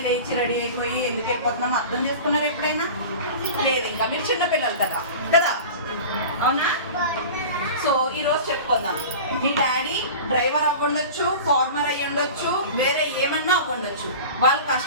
లేచి రెడీ అయిపోయి ఎందుకు వెళ్ళిపోతున్నాం అర్థం చేసుకున్నారు ఎప్పుడైనా? లేదు, ఇంకా మీరు చిన్నపిల్లలు కదా కదా, అవునా? సో ఈరోజు చెప్పుకుందాం. మీ డాడీ డ్రైవర్ అవ్వండొచ్చు, ఫార్మర్ అయ్యి ఉండొచ్చు, వేరే ఏమన్నా అవ్వండొచ్చు. వాళ్ళు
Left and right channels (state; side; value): inverted; both; correlation -0.35